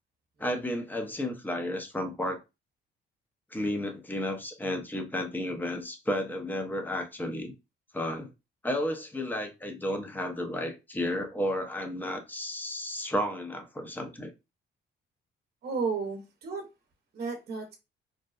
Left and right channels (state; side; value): normal; both; correlation 0.62